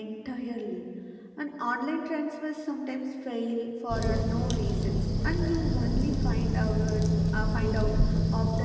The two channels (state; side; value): identical; both; correlation 1.00